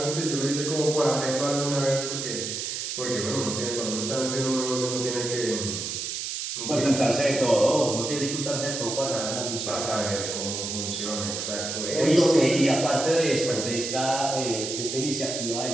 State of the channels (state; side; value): noise; right; hiss, 4 dB below the sound